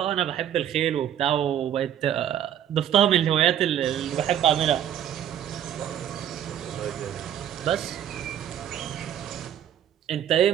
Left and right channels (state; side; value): quieter; left; 10.3 dB